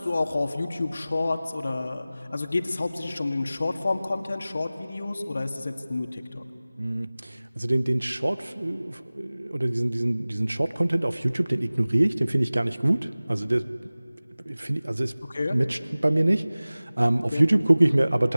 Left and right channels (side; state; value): both; inverted; correlation -0.98